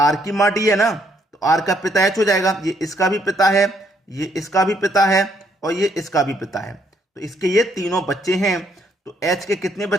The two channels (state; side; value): normal; both; correlation 0.70